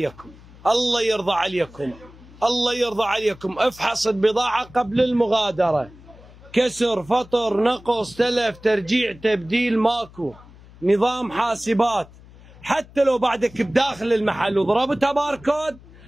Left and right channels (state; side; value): noise; left; hum, 22 dB below the sound